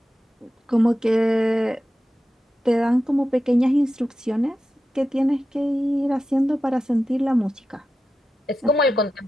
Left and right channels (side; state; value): both; normal; correlation 0.91